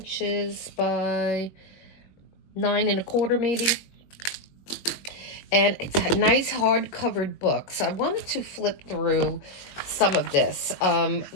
by 9 1/4 maybe, and it's a nice hard-covered book. So I wanted to flip through some of this.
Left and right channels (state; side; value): late; right; 21 ms